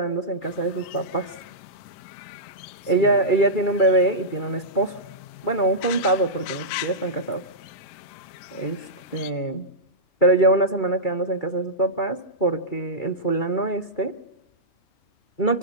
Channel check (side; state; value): right; late; 2.3 ms